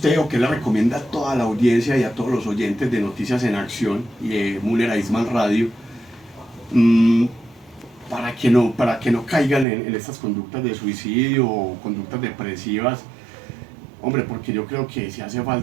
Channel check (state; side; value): drops out; left; at 9.7 s